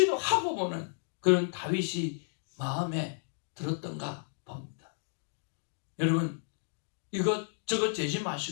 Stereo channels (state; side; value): silent; right; digital silence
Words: 보는 그런 다윗이 마음에 들었던가 봅니다. 여러분 이것저것 재지